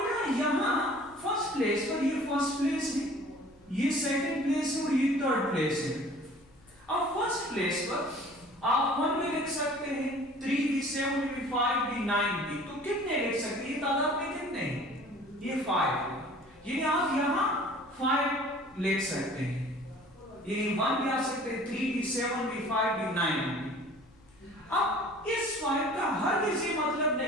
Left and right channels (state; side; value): normal; both; correlation 0.48